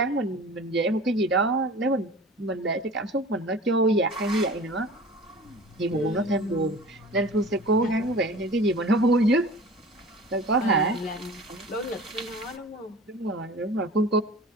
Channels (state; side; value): normal; both; correlation 0.40